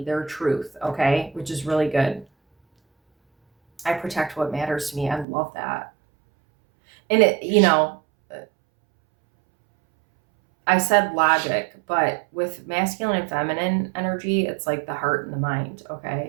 their truth, okay? Which is really good. I protect what matters to me. I love that. And I said logic, but with masculine and feminine energy, it's like the heart and the mind,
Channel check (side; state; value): left; drops out; at 5.2 s